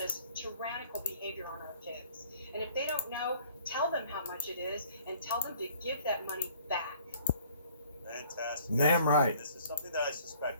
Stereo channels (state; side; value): inverted; both; correlation -0.56